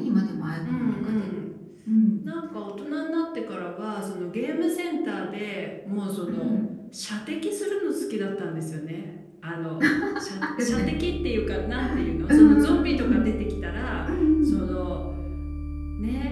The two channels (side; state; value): both; identical; correlation 1.00